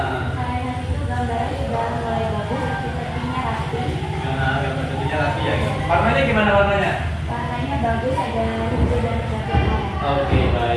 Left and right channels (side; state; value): both; identical; correlation 1.00